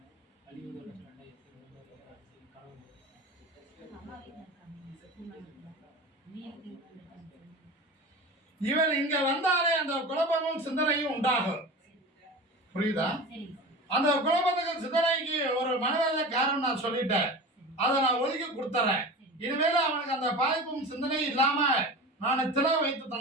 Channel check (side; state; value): both; normal; correlation 0.32